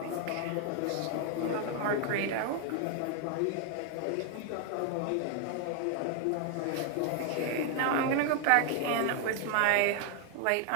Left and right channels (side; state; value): both; different; correlation 0.00